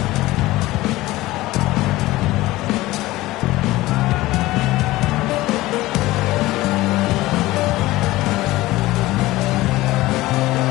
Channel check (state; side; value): quieter; right; 18.2 dB